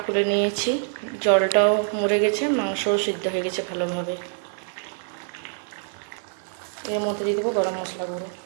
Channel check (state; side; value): silent; left; digital silence